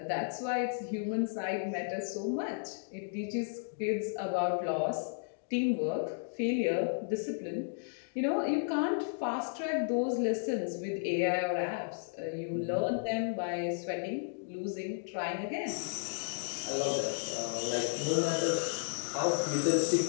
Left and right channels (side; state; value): right; silent; digital silence